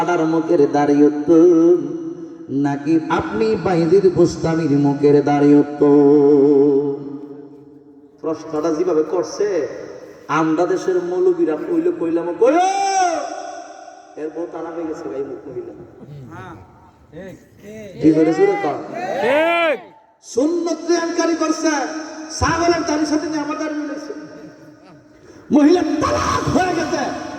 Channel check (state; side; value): identical; both; correlation 1.00